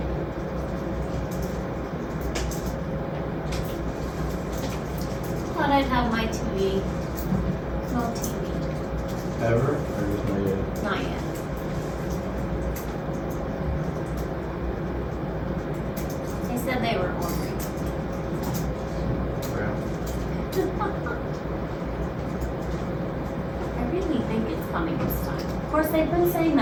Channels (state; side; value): identical; both; correlation 1.00